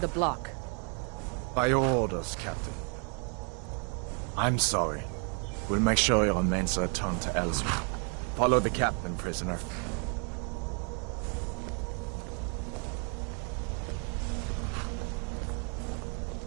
block. By your orders, Captain. I'm sorry. We'll make sure your remains are returned to Ellsworth. Follow the captain, prisoner.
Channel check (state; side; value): quieter; left; 39.1 dB